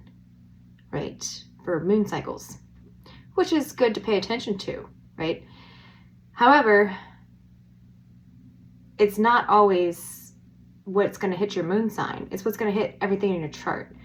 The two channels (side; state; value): both; identical; correlation 1.00